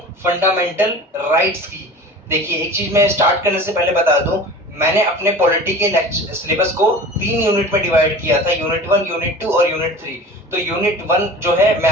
फंडामेंटल राइट्स की। देखिए, एक चीज मैं स्टार्ट करने से पहले बता दूं, मैंने अपने पॉलिटी के सिलेबस को 3 यूनिट में डिवाइड किया था, यूनिट 1, यूनिट 2 और यूनिट 3। तो यूनिट 1 जो है मैं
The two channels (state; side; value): normal; both; correlation 0.38